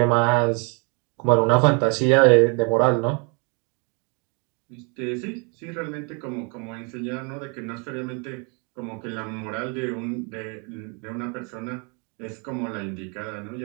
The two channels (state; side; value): quieter; left; 34.4 dB